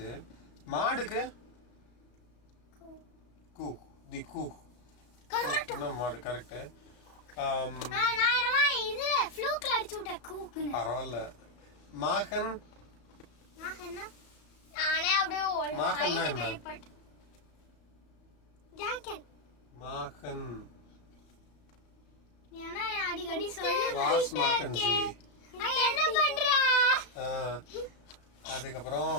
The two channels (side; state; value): right; late; 34 ms